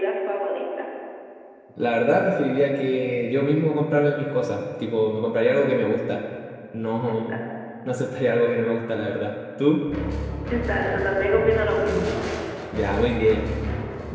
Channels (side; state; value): both; identical; correlation 1.00